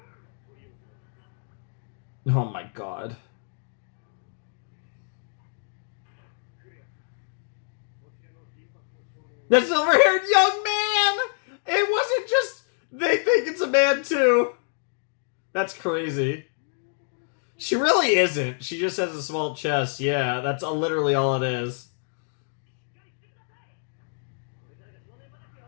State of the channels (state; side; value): silent; right; digital silence